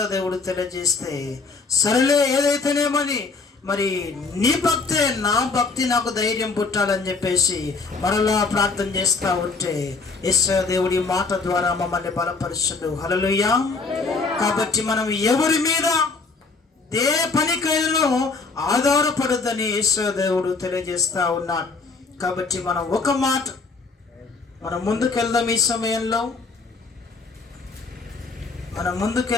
దేవుడు తెలియజేస్తే, సరేలే ఏదైతేనేమని మరి నీ భక్తే నా భక్తి నాకు ధైర్యం పుట్టాలని చెప్పేసి మరలా ప్రార్థన చేస్తూ ఉంటే యేసు దేవుడి మాట ద్వారా మమ్మల్ని బలపరుచుడు. హల్లెలూయా. కాబట్టి మనం ఎవరి మీద ఏ పనికైనా ఆధారపడద్దని యేసు దేవుడు తెలియజేస్తూ ఉన్నాడు. కాబట్టి మనం ఒక మాట మనం ముందుకెళ్దాం. ఈ సమయంలో మనం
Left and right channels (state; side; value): quieter; right; 4.2 dB